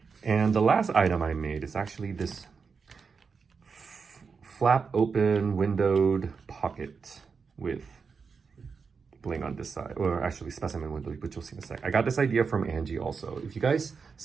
And the last item I made is actually this flap open windowed pocket with bling on this side, or actually specimen window, which you'll see in a sec. I got this idea from Angie also. If you guys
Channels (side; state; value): left; quieter; 5.4 dB